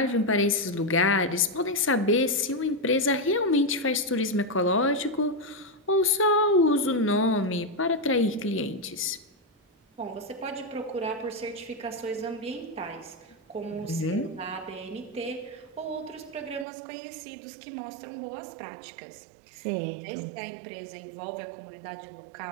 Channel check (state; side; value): drops out; left; at 16.7 s